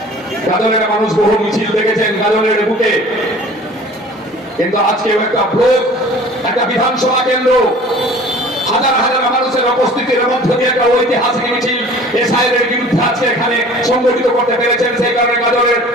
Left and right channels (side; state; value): both; normal; correlation 0.46